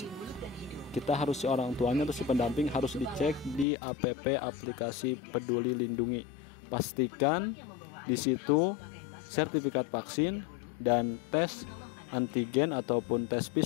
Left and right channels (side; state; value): right; drops out; at 3.7 s